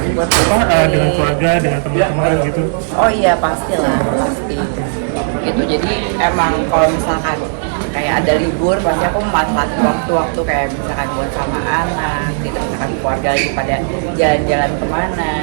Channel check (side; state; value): left; silent; digital silence